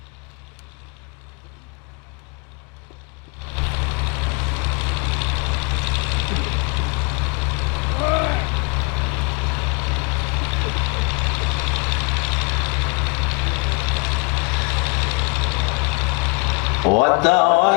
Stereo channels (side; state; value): right; quieter; 30.9 dB